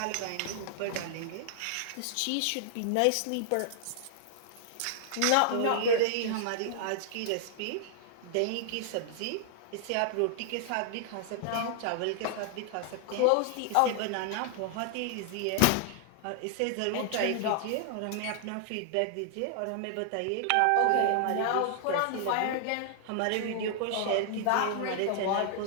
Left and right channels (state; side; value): different; both; correlation 0.00